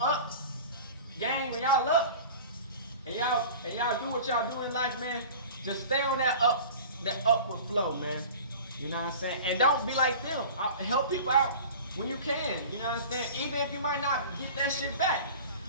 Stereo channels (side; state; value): both; inverted; correlation -0.39